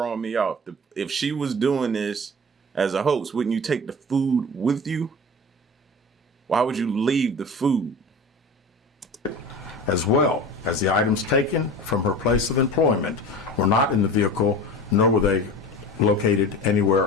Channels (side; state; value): both; normal; correlation 0.34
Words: me off. If she was doing this as a host, wouldn't you take the food with you? Why would you leave the food? As well as the items taken from her place of employment were not in the vehicle, nor were they located anywhere